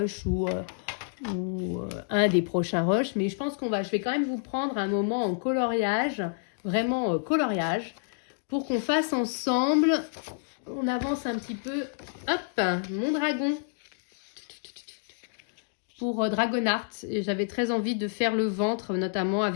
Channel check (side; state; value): right; silent; digital silence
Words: ou un des prochains rushs, mais je pense je vais quand même vous prendre un moment en coloriage, vraiment coloriage, pour qu'on fasse ensemble, on avance un petit peu, hop, mon dragon, pour Dragonart. Et j'avais très envie de faire le ventre, notamment